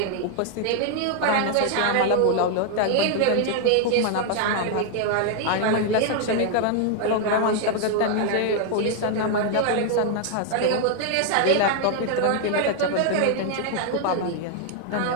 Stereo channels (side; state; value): both; different; correlation 0.00